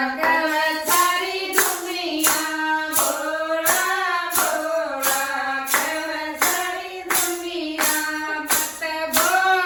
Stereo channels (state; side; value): identical; both; correlation 1.00